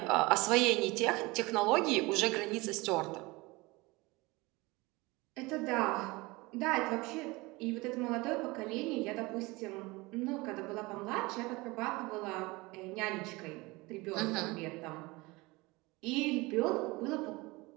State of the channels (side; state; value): left; quieter; 23.2 dB